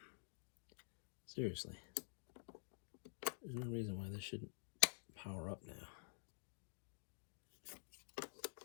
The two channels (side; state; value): right; silent; digital silence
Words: Seriously. There's no reason why this shouldn't power up now.